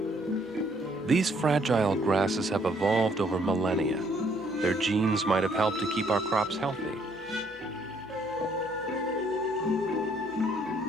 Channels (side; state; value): left; noise; hum, 27 dB below the sound